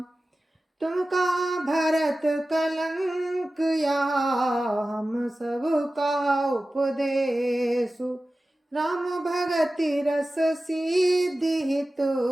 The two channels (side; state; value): both; normal; correlation 0.95